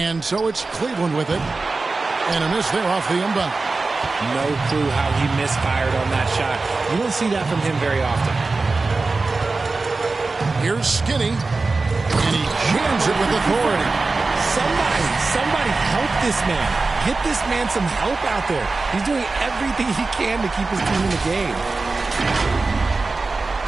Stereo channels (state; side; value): quieter; left; 3.7 dB